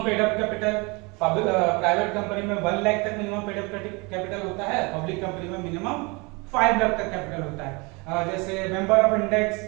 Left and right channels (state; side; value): quieter; left; 28.0 dB